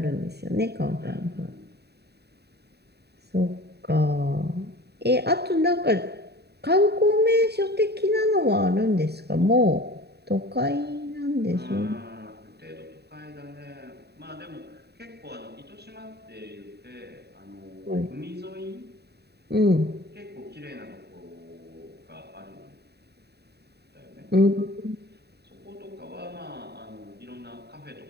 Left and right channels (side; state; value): left; late; 0.48 ms